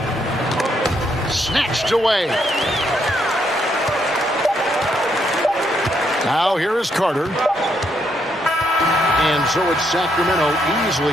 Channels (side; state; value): both; normal; correlation 0.75